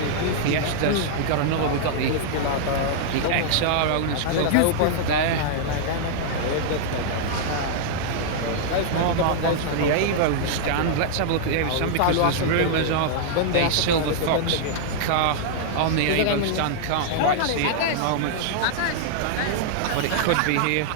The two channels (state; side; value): different; both; correlation -0.01